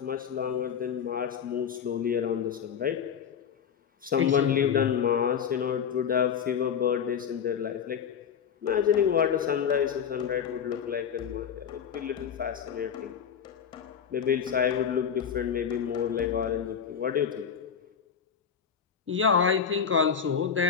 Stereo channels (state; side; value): quieter; right; 7.6 dB